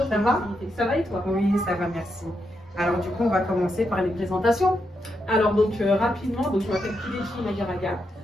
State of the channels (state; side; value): normal; both; correlation 0.83